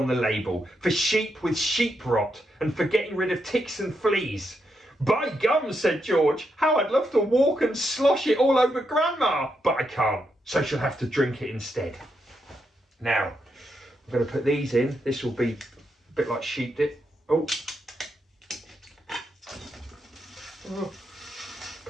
the label, for sheep with sheep rot and for getting rid of ticks and fleas. By gum, said George, how I'd love to walk and slosh it all over Grandma, but I can't, so she'll have to drink it instead. Now, I'm going to put these in. This will be a bit like sheep dip. Oh,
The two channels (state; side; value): normal; both; correlation 0.82